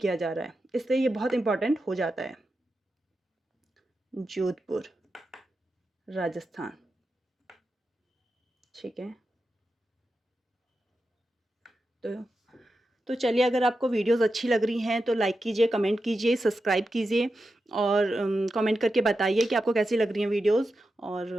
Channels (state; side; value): normal; both; correlation 0.90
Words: जा रहा है, इसलिए ये बहुत इम्पोर्टेंट हो जाता है। जोधपुर, राजस्थान, ठीक है। तो चलिए, अगर आपको वीडियोस अच्छी लग रही हैं तो लाइक कीजिए, कमेंट कीजिए, सब्सक्राइब कीजिए और कमेंट करके बताइए कि आपको कैसी लग रही हैं वीडियोस।